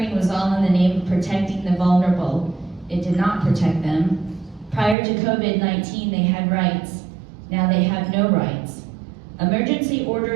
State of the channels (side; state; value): left; drops out; at 5.0 s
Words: was all in the name of protecting the vulnerable. It did not protect them. Prior to COVID-19, they had rights. Now they have no rights. Emergency